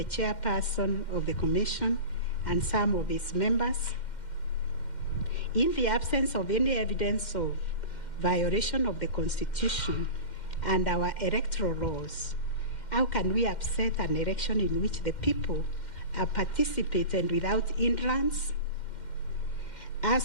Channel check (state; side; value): late; right; 2.1 ms